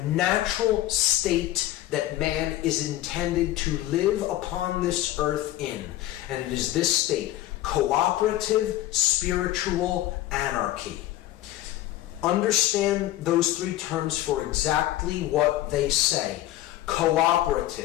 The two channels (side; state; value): right; quieter; 14.6 dB